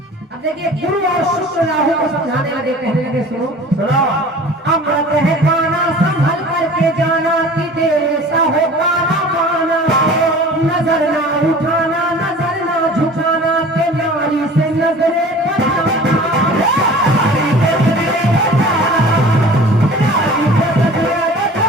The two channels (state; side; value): normal; both; correlation 0.43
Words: अब देखिए गुरु और शुक्र राहु को समझाने लगे, कहने लगे सुनो सुनो। अमृत है पाना संभल करके जाना कि तेरे सा हो पाना पाना, नजर ना उठाना नजर ना झुकाना के नारी से नजरे